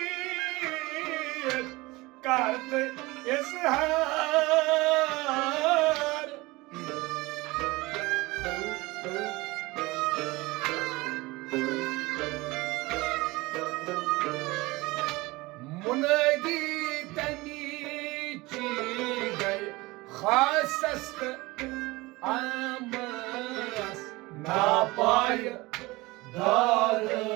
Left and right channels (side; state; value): left; quieter; 21.8 dB